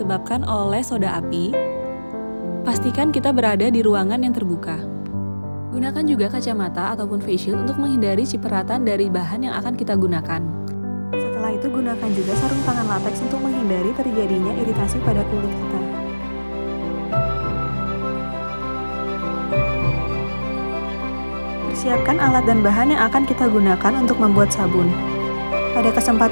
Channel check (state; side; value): inverted; both; correlation -1.00